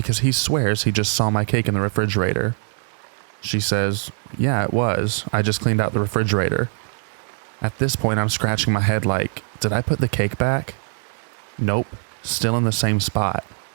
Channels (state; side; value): silent; left; digital silence